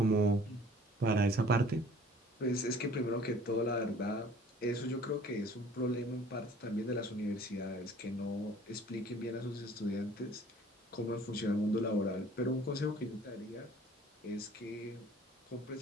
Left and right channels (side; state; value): both; normal; correlation 0.51